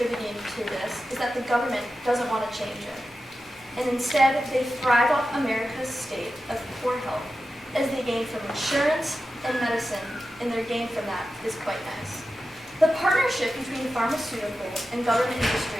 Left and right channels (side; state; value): both; normal; correlation 0.92